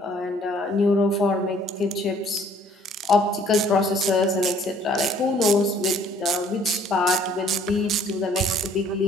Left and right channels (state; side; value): normal; both; correlation 0.59